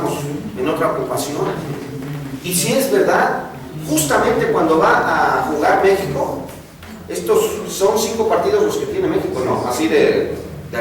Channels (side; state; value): both; identical; correlation 1.00